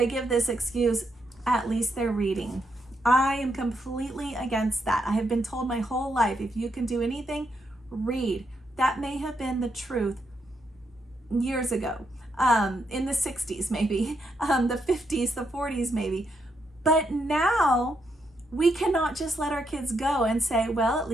give this excuse, at least they're reading. I am completely against that. I have been told my whole life, if you can do anything, read. That may have been the truth years ago, in the 60s maybe, the 50s, the 40s maybe. But now we cannot just let our kids go and say, well, at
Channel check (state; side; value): normal; both; correlation 0.79